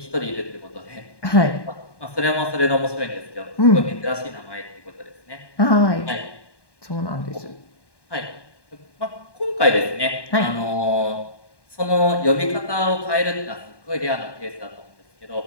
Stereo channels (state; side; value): late; right; 1.1 ms